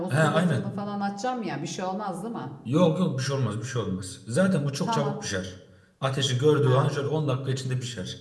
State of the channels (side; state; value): both; identical; correlation 1.00